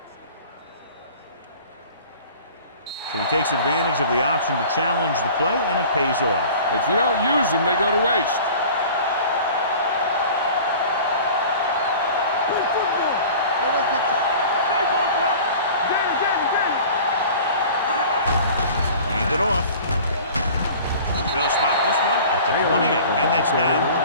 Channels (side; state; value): both; inverted; correlation -0.43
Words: So he takes advantage of the option to challenge the play, and it pays off. If you don't use them, they go to waste. Hand it off. They'll spot this one at the 28, and that's now